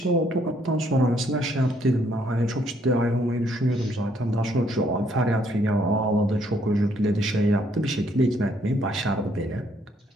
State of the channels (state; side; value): normal; both; correlation 0.68